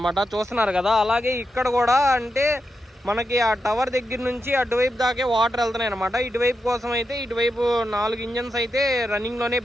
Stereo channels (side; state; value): both; normal; correlation 0.87